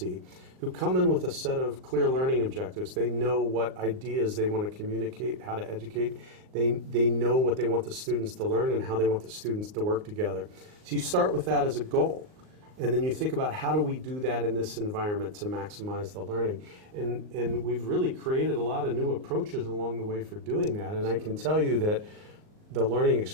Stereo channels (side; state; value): left; late; 38 ms